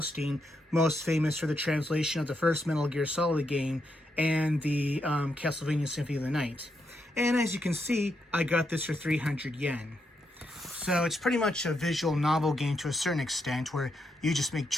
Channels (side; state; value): both; normal; correlation 0.81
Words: most famous for the translation of the first Metal Gear Solid game and the Castlevania Symphony of the Night. And as you can see, I got this for 300 yen. So it's pretty much a visual novel game to a certain extent where you just make